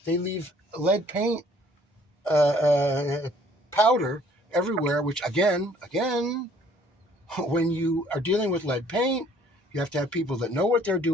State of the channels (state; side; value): normal; both; correlation 0.59